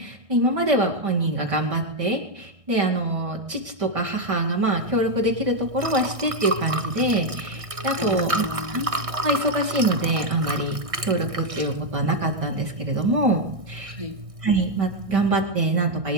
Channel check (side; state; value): left; late; 1.6 ms